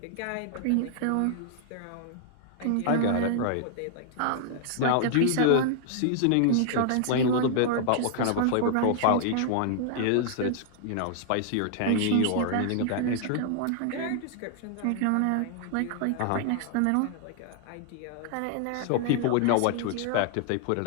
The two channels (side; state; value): both; different; correlation -0.01